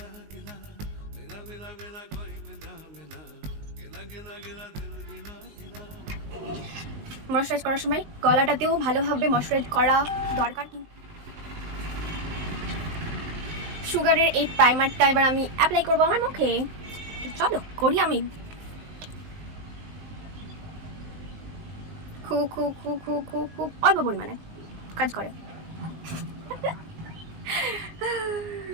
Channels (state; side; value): late; left; 19 ms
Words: ময়শ্চারাইজ করার সময় গলাটাতেও ভালোভাবে ময়শ্চারাইজ করা দরকার। কিন্তু সুগারের এই প্রাইমারটা এবার আমি অ্যাপ্লাই করবো আমার মুখে। চলো করি আমি। খুব খুব খুব খুব খুব খুব অল্প পরিমাণে কাজ করে।